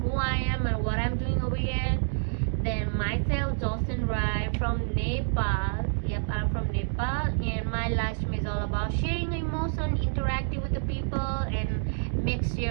I am and what I'm doing over here, then myself, Jocelyn Rai from Nepal. Yep, I'm from Nepal, and my live stream is all about sharing emotion, interacting with the people, and make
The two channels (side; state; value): left; silent; digital silence